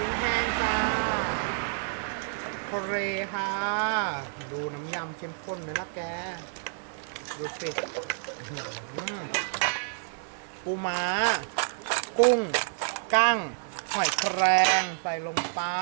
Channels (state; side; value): silent; left; digital silence